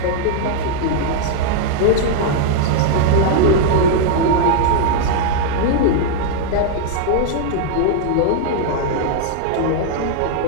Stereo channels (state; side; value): different; both; correlation 0.00